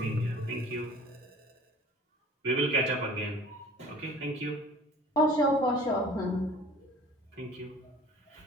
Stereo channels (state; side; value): normal; both; correlation 0.46